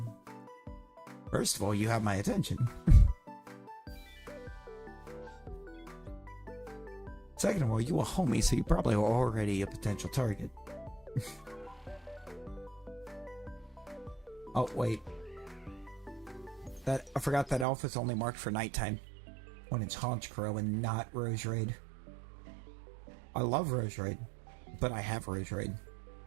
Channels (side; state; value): left; drops out; at 17.7 s